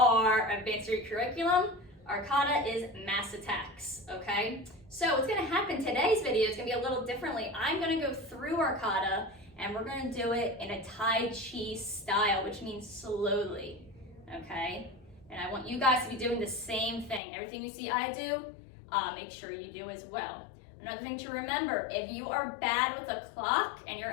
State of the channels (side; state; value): right; drops out; at 17.2 s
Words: advanced curriculum. Our kata is mass attacks, okay? So what's gonna happen today's video is gonna be a little differently. I'm gonna go through our kata and we're gonna do it in a Tai Chi style, which means slowly, okay? And I want you guys to be doing the same thing. Everything you see I do, make sure you do as well. Another thing to remember, if you are bad with a clock and you're